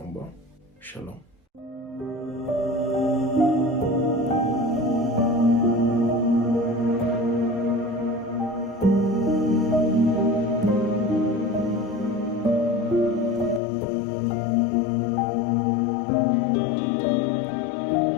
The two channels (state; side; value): drops out; right; at 13.6 s